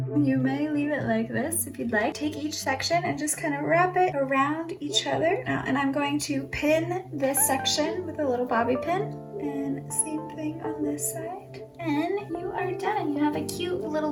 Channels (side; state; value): both; identical; correlation 1.00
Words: You may leave it like this if you'd like. Take each section and just kind of wrap it around each other. Now, and I'm going to pin this section with a little bobby pin, and same thing on this side. And you are done. You have a cute little